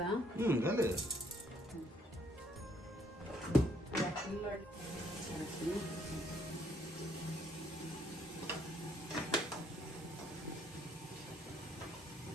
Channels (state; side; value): normal; both; correlation 0.67